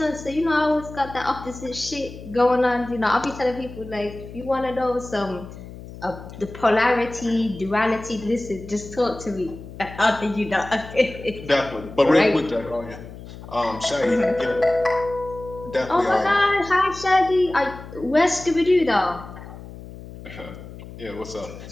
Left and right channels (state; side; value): noise; left; hum, 14 dB below the sound